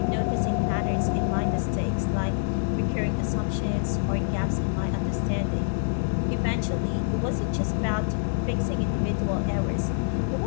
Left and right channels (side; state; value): right; silent; digital silence